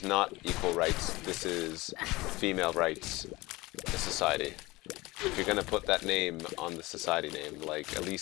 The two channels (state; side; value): quieter; right; 21.3 dB